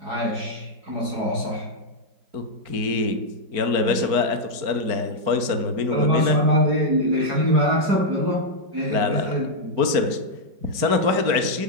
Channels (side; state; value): left; late; 4.5 ms